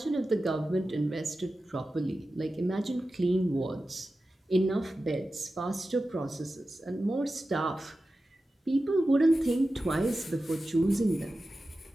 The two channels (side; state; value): both; normal; correlation 0.94